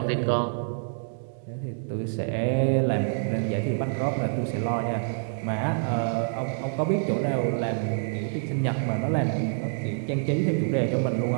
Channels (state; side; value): silent; left; digital silence